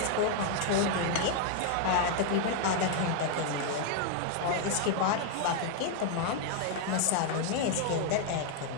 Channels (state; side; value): different; both; correlation 0.00